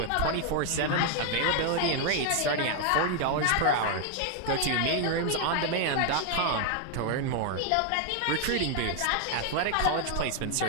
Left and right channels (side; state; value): both; different; correlation 0.00